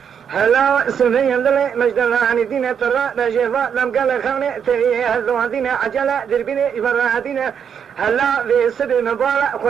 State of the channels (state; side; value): quieter; left; 7.7 dB